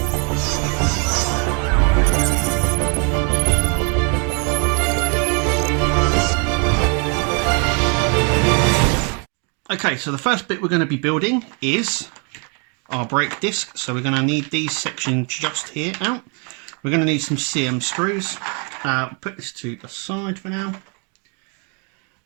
Okay, so the first bit we're going to be building is our brake disc. So we're going to need these sections just here out. We're going to need some CM screws. Put this to the side for now.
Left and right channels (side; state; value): left; quieter; 36.2 dB